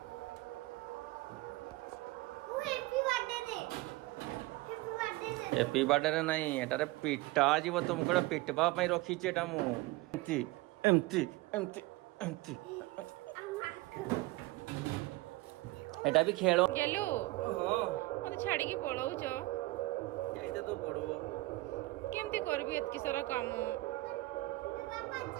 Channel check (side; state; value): left; quieter; 20.5 dB